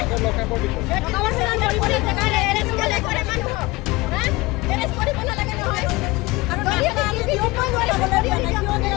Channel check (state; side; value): quieter; right; 21.9 dB